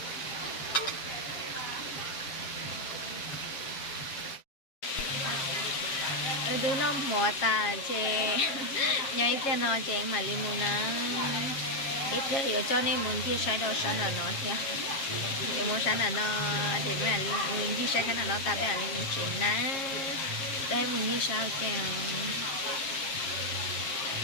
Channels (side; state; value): right; late; 7.4 ms